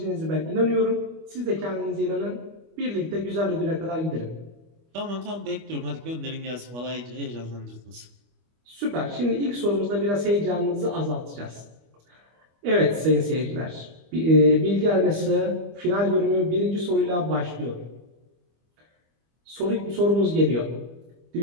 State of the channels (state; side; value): late; left; 25 ms